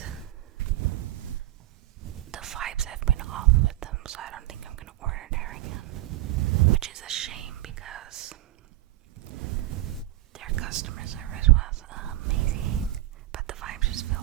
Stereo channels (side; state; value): left; quieter; 16.3 dB